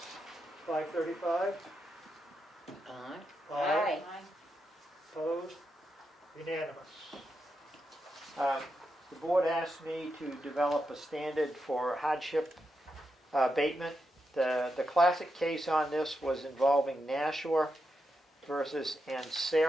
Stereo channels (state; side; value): normal; both; correlation 0.85